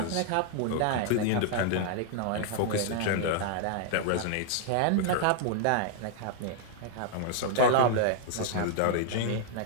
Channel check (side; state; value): both; different; correlation -0.01